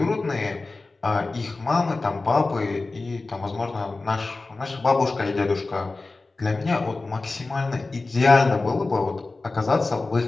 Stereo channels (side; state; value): right; quieter; 3.5 dB